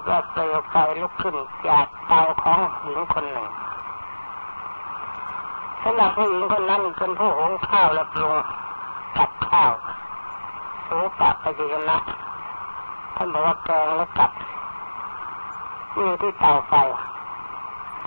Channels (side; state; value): both; inverted; correlation -1.00